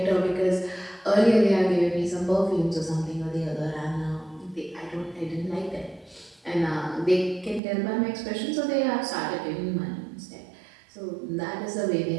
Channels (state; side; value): drops out; left; at 7.6 s